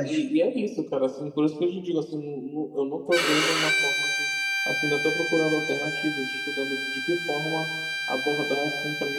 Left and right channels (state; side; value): identical; both; correlation 1.00